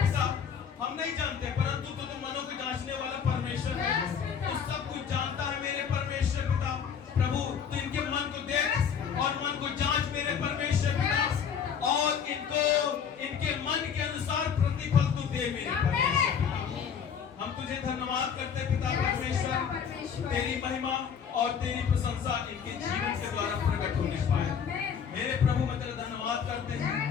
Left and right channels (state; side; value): quieter; right; 7.3 dB